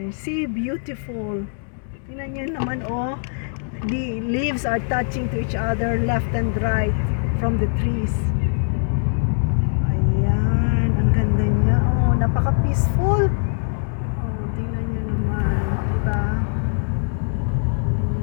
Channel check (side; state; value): right; silent; digital silence